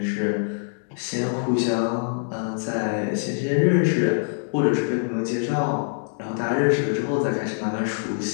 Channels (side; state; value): right; silent; digital silence